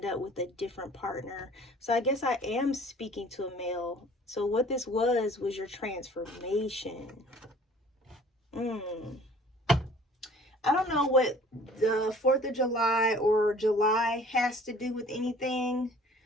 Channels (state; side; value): normal; both; correlation 0.51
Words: up with a different partner. So I guess I am speaking to a male. So what this was your transformation. I don't know what the 4th of July or July has to do with anything.